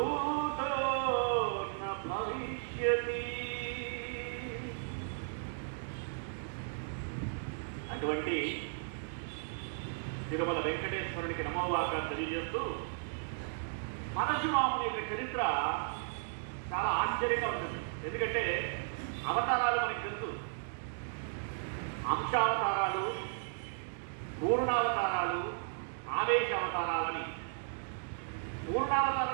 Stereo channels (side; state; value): left; silent; digital silence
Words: న భవిష్యతి. అటువంటి తిరుమల వెంకటేశ్వరునికి నమోవాక తెలియజేస్తూ పరశురాముని యొక్క చరిత్ర చాలా ఆశ్చర్యంగా ఉంటుంది. ఎందుకంటే అవతారాలు మనకి తెలుసు, అంశావతారాలు, పూర్ణావతారాలు, ఆవేశావతారాలని.